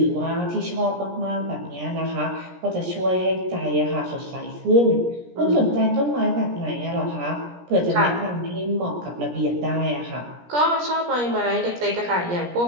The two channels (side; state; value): left; late; 17 ms